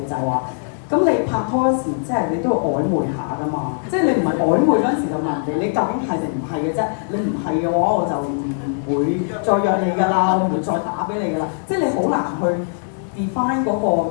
就係話，咁你拍拖嗰時即係你都要曖昧下噶嘛，即係你唔係曖昧嗰陣時就問人哋你究竟係定唔係嘅啫，你唔係嘅話我就唔會再約你㗎啦，我唔會再打俾你㗎啦，即係你好難去 define 嗰個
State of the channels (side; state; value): right; silent; 63 dB below the other